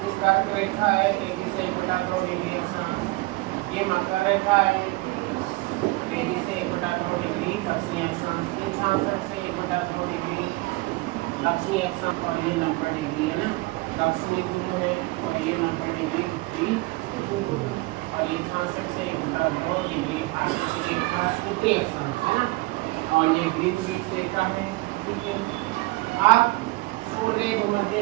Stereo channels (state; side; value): quieter; left; 22.9 dB